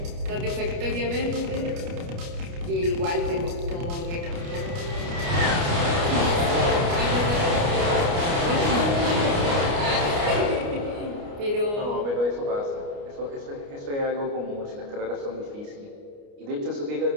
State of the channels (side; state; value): left; late; 29 ms